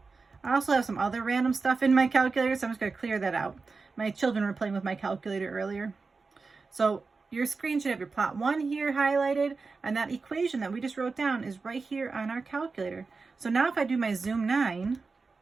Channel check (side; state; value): left; quieter; 4.3 dB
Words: I also have some other random stuff in my calculator, so I'm just going to clear that out. My children were playing with my calculator earlier. So your screen should have your plot 1 here highlighted, and that equation that we just wrote down is right here on our calculator. So now if I do my zoom 9,